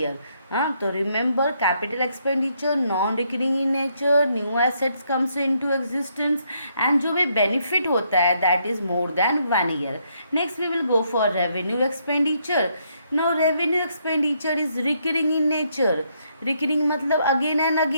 तो remember, capital expenditure non recurring in nature, new assets comes into existence, and जो भी बेनिफिट होता है that is more than 1 year. Next we will go for revenue expenditure. Now revenue expenditure is recurring in nature. Recurring मतलब again and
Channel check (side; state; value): both; inverted; correlation -0.74